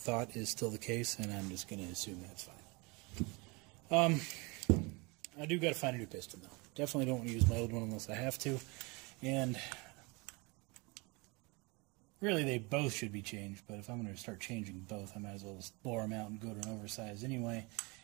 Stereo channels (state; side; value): quieter; left; 27.7 dB